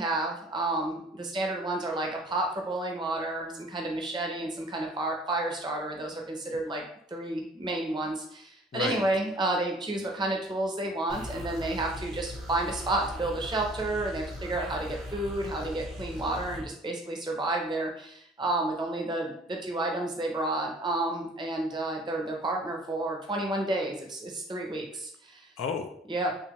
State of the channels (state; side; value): normal; both; correlation 0.52